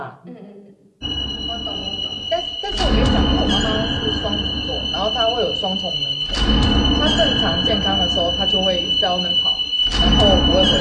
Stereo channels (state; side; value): identical; both; correlation 1.00